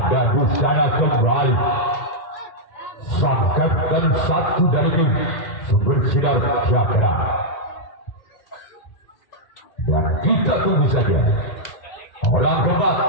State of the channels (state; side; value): late; right; 1.8 ms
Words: di sana kembali sangkatkan satu dari tim Sumber Sinar Cakra. Dan kita tunggu saja orang keempat